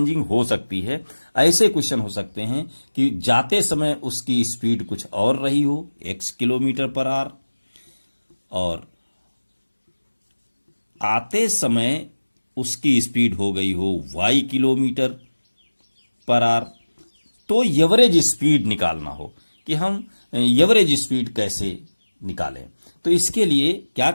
हो सकती है। ऐसे क्वेश्चन हो सकते हैं कि जाते समय उसकी स्पीड कुछ और रही हो, x किलोमीटर पर आवर, और आते समय उसकी स्पीड हो गई हो y किलोमीटर पर आवर। तो एवरेज स्पीड निकालना हो कि हम एवरेज स्पीड कैसे निकालें, तो इसके लिए क्या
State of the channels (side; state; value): both; inverted; correlation -1.00